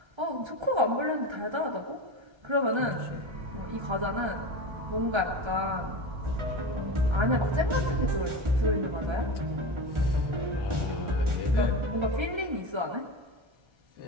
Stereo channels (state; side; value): late; left; 1.3 ms